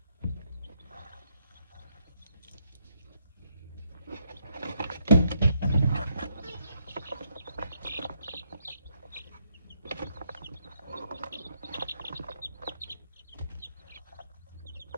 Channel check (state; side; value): inverted; both; correlation -0.75